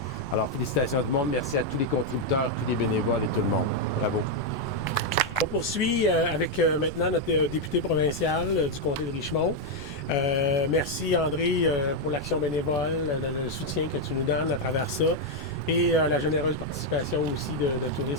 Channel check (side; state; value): right; noise; rumble, 13 dB below the sound